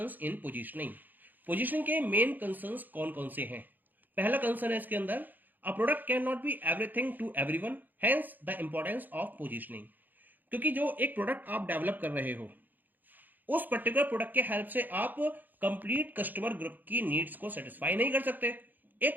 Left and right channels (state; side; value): late; left; 0.086 ms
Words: in positioning. Positioning के मेन कंसर्न्स कौन कौन से हैं? पहला कंसर्न है इसके अंदर, a product can not be everything to everyone, hence the importance of positioning. क्योंकि जो एक प्रोडक्ट आप डेवलप कर रहे हो, उस पर्टिकुलर प्रोडक्ट के हेल्प से आप कंप्लीट कस्टमर ग्रुप की नीड्स को सेटिस्फाई नहीं कर सकते।